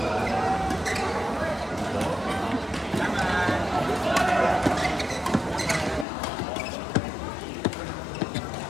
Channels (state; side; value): drops out; right; at 6.1 s